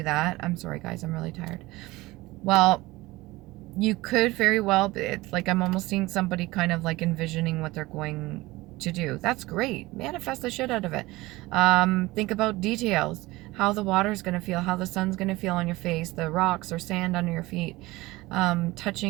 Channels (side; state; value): left; quieter; 20.1 dB